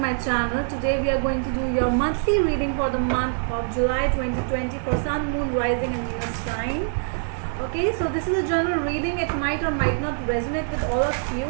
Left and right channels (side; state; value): left; silent; digital silence